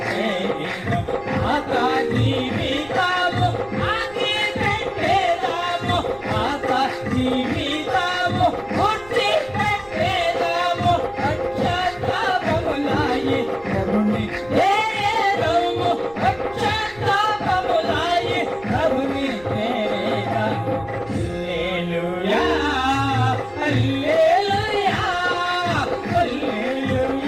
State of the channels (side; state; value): right; noise; rumble, 24 dB below the sound